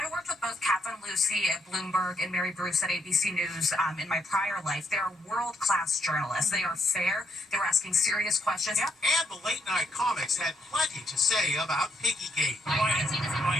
worked with both Catherine Lucy at Bloomberg and Mary Bruce at ABC News in my prior life. They are world-class journalists. They are fair. They were asking serious questions. Yeah. And the late-night comics had plenty to say about Piggygate.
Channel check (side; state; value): both; normal; correlation 0.76